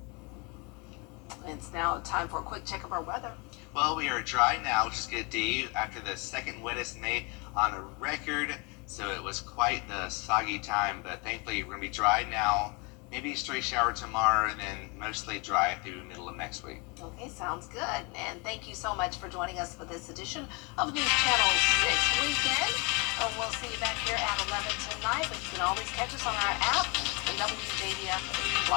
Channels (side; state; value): right; quieter; 30.1 dB